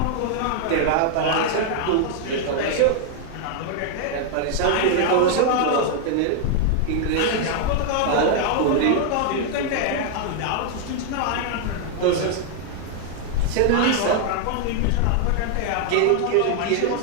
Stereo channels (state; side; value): different; both; correlation 0.00